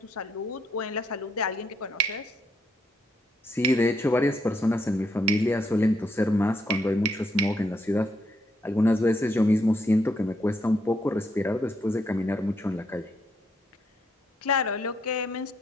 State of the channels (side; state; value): both; normal; correlation 0.75